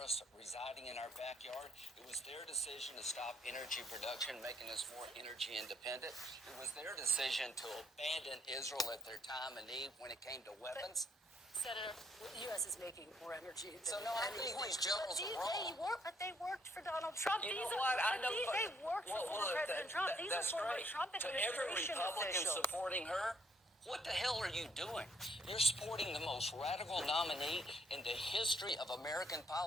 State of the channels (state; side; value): normal; both; correlation 0.68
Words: residing in our backyard. It was their decision to stop energy production, making us more energy independent. It was their decision to abandon Israel at their time of need when it came to weapons. Senator, the U.S. is making more energy. So, no, I think these generals are wrong. But they worked for Donald Trump. You know what? I know. They worked for former President Trump. These are former Trump administration to every Republican officials. supporting her, what the hell are you doing? You're supporting the most radical nominee in the history of American